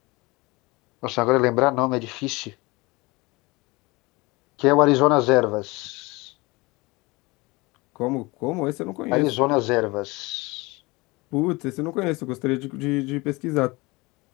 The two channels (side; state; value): right; quieter; 23.8 dB